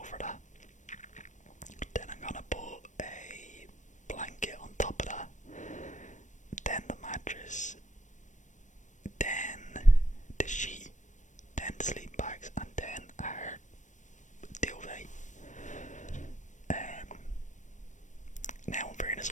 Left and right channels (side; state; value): right; late; 0.35 ms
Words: that. Then I'm gonna put a blanket on top of that. Then the mattress. Then the sheet. Then the sleep bags. And then our duvet. Now in fairness,